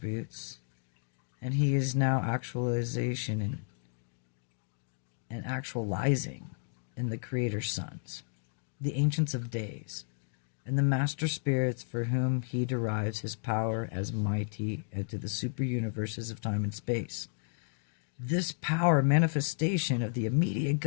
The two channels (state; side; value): silent; right; digital silence